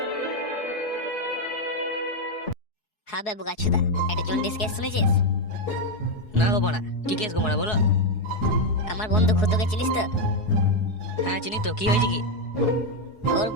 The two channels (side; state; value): right; late; 4.7 ms